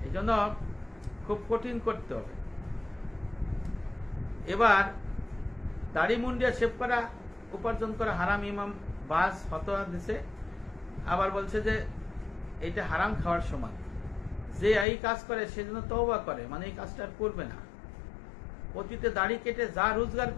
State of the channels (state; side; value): drops out; right; at 14.9 s